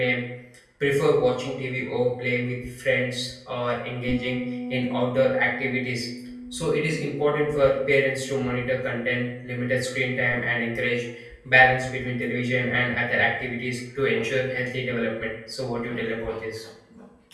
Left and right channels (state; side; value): identical; both; correlation 1.00